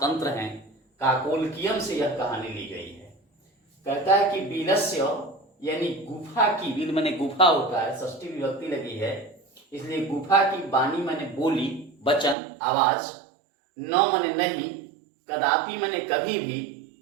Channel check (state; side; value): drops out; left; at 12.4 s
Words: हैं। काकोलकियम से यह कहानी ली गई है। कहता है कि बीलस्य यानी गुफा की, बील माने गुफा होता है, षष्ठी विभक्ति लगी है, इसलिए गुफा की वाणी माने बोली, वचन, आवाज, न माने नहीं, कदापि माने कभी भी,